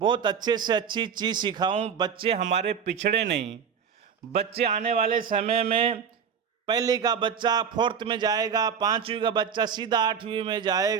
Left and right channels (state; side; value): quieter; left; 7.2 dB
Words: अच्छे से अच्छी चीज़ सिखाऊं, बच्चे हमारे पिछड़े नहीं। बच्चे आने वाले समय में पहली का बच्चा 4th में जाएगा, 5वीं का बच्चा सीधा 8वीं में